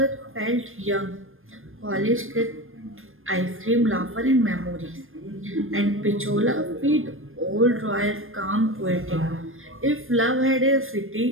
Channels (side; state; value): left; late; 0.60 ms